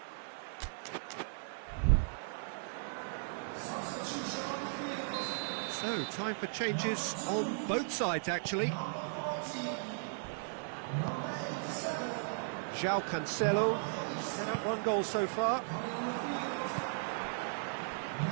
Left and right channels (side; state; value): left; silent; 53 dB below the other